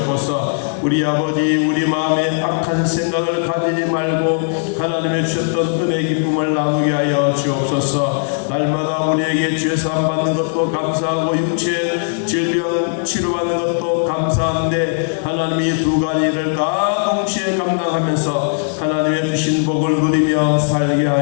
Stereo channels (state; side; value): silent; right; digital silence